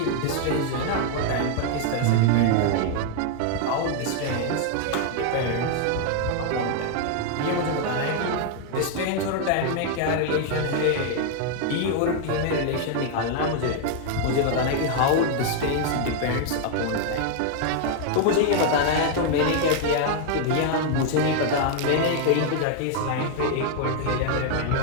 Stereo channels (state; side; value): different; both; correlation 0.00